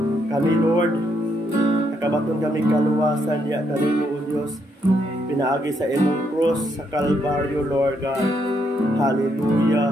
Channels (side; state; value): both; normal; correlation 0.75